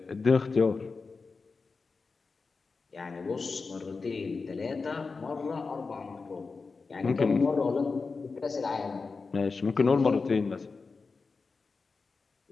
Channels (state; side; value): quieter; right; 4.4 dB